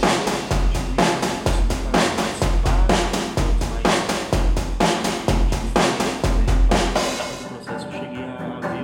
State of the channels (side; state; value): both; identical; correlation 1.00